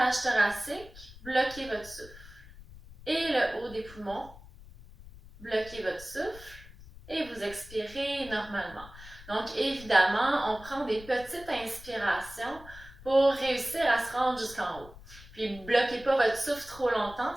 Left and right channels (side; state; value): left; noise; rumble, 18 dB below the sound